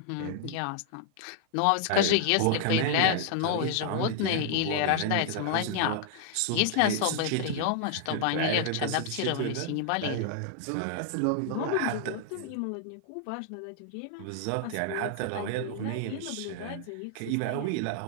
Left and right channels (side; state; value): both; different; correlation 0.00